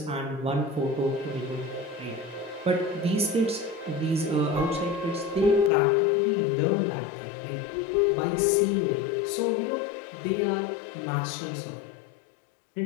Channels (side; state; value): right; drops out; at 5.7 s